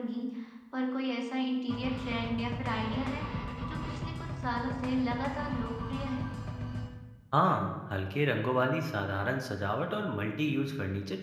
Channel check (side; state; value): both; identical; correlation 1.00